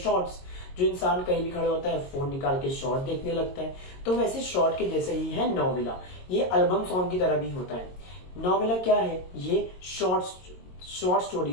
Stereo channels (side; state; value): right; late; 22 ms